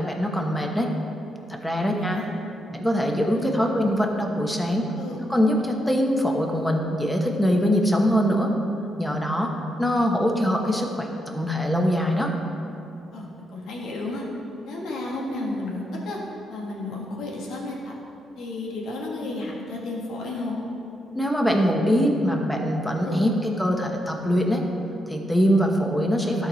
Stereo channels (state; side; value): normal; both; correlation 0.82